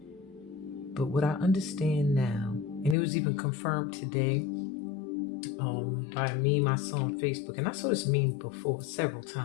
But what I understand now, and it was even confirmed today by a meme I saw on Facebook, and I saw this meme before several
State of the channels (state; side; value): drops out; right; at 3.0 s